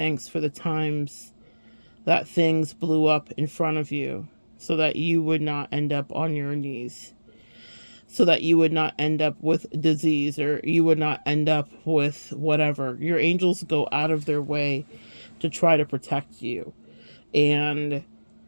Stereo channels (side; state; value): both; inverted; correlation -1.00